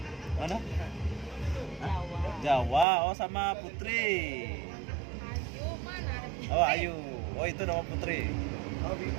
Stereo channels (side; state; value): left; drops out; at 2.9 s